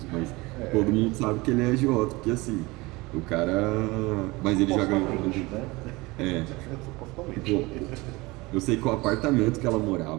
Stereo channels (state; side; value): quieter; left; 22.7 dB